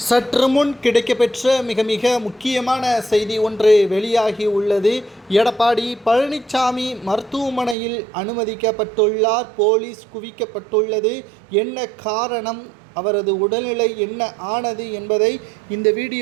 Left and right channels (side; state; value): left; drops out; at 7.8 s